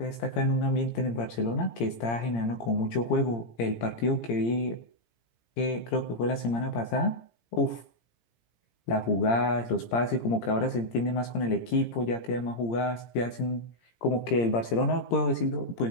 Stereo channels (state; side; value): late; right; 17 ms